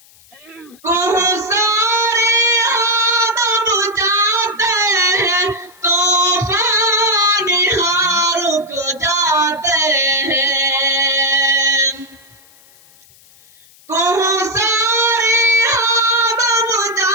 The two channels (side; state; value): left; noise; hiss, 27 dB below the sound